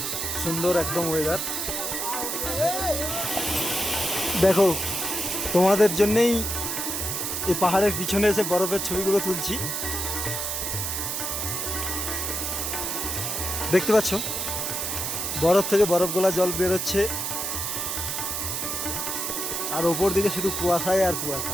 সুন্দর একদম ওয়েদার। দেখো, তোমাদের জন্যেই এই পাহাড়ের পিছনে এসে বরফের ছবিগুলো তুলছি। দেখতে পাচ্ছ বরফ থেকে বরফ গোলা জল বেরোচ্ছে, আর ওপর দিকে শুধু কুয়াশায় আর কুয়াশা।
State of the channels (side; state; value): right; noise; hiss, 2 dB below the sound